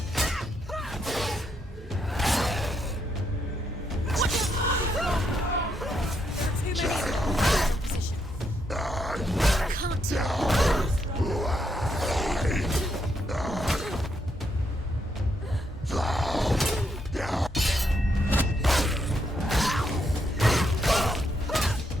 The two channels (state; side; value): normal; both; correlation 0.78